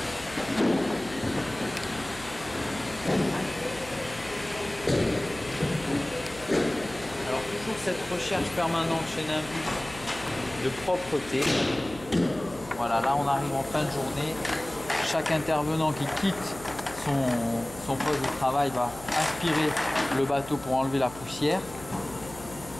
alors toujours cette recherche permanente chez Nimbus de propreté. Voilà, là on arrive en fin de journée. Chaque intervenant qui quitte son poste de travail va aspirer le bateau pour enlever la poussière.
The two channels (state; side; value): noise; left; hum, 17 dB below the sound